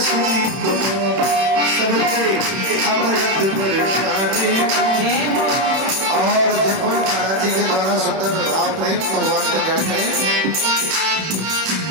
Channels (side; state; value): left; late; 31 ms